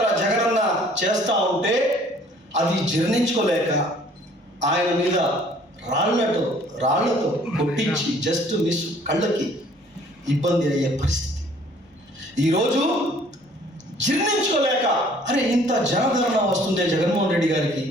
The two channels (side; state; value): both; normal; correlation 0.56